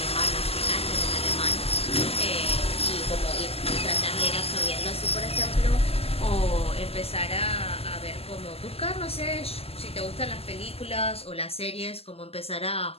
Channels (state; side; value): late; right; 0.29 ms